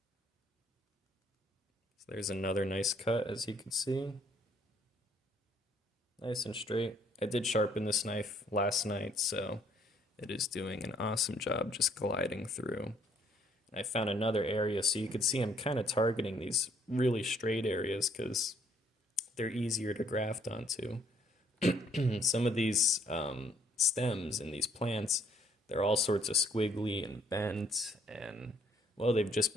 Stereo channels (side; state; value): both; normal; correlation 0.65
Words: So there's another nice cut, as you can see. Nice and straight. I did sharpen this knife last night, so it is doing an awesome job just gliding through. I found another area, so you can see I'm kind of targeting these really straight areas because they're easier to graft onto. Some of these stems in these plants, they're all sorts of squiggly and bent, and well, they've just